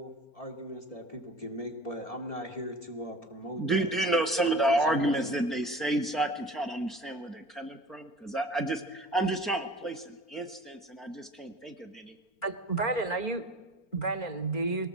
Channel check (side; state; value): right; late; 4.4 ms